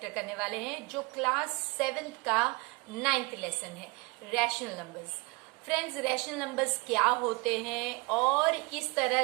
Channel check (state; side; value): quieter; left; 27.4 dB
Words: करने वाले हैं जो क्लास 7th का 9th लेसन है, rational numbers. Friends, rational numbers क्या होते हैं और किस